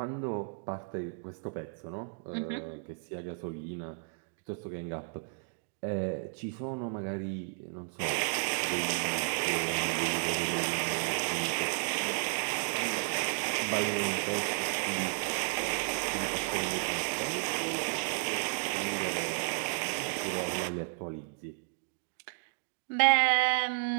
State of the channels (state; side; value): silent; left; 56 dB below the other